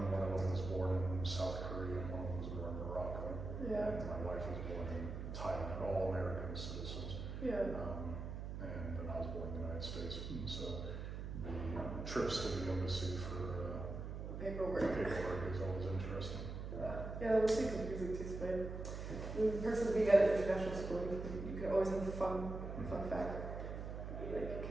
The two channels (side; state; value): right; noise; hum, 6 dB below the sound